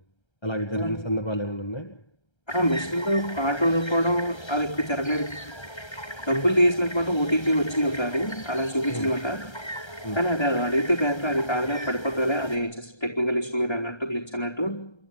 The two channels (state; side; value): late; right; 1.3 ms